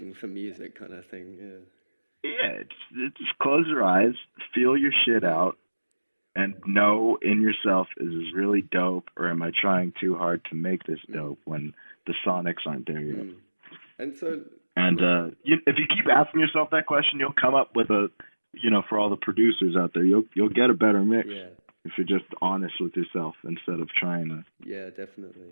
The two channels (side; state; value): both; inverted; correlation -1.00